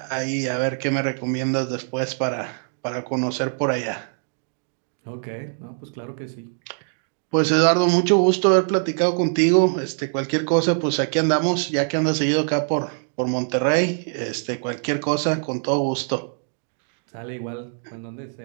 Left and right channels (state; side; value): silent; left; digital silence